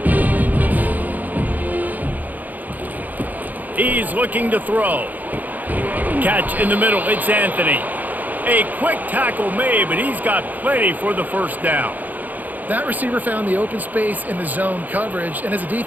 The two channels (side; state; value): left; late; 0.082 ms